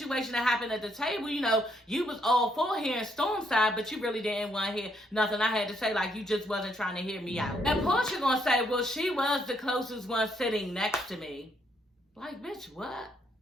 that happened at the table, you know, you was all for hearing Storm's side, but you really didn't want to hear nothing I had to say, like you just wasn't trying to hear me out. And Porsha gonna say, well, she was the closest one sitting next to me. Like, bitch, what?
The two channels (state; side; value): normal; both; correlation 0.73